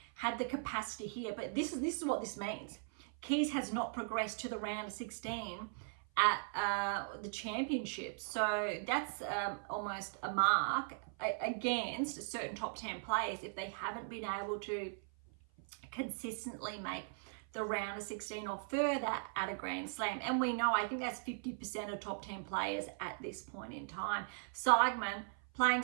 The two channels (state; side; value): silent; left; 52 dB below the other